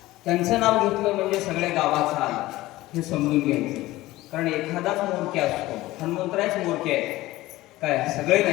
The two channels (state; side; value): quieter; right; 17.7 dB